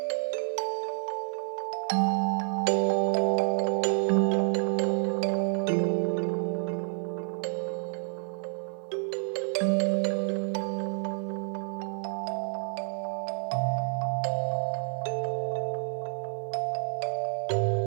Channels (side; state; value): left; silent; digital silence